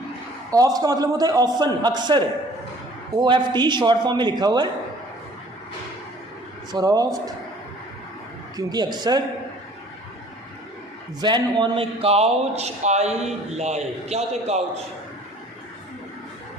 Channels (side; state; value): both; normal; correlation 0.52